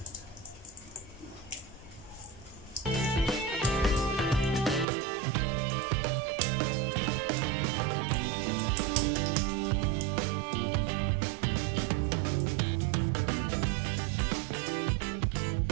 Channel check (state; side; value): drops out; left; at 4.9 s